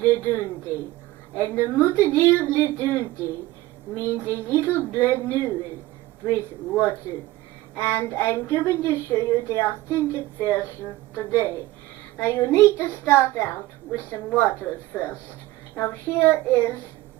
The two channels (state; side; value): quieter; left; 17.3 dB